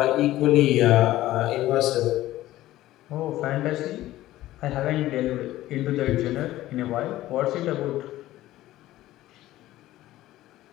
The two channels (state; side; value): quieter; right; 15.4 dB